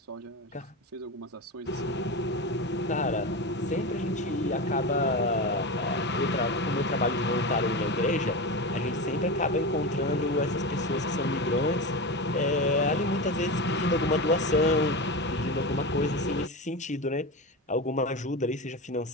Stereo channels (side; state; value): both; normal; correlation 0.21